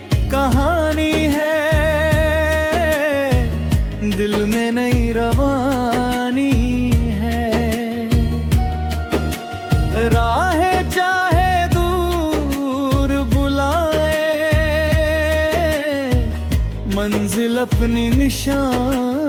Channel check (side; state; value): both; identical; correlation 1.00